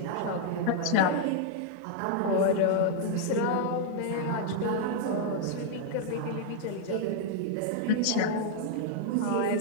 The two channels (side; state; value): both; different; correlation -0.01